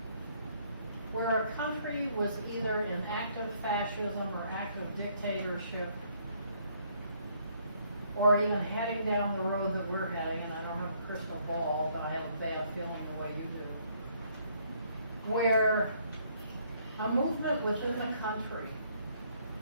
where a country was either in active fascism or active dictatorship, or even heading down the road that we're heading, and I don't have a crystal ball, but I have a bad feeling the way you do, where a movement within the country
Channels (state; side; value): inverted; both; correlation -0.67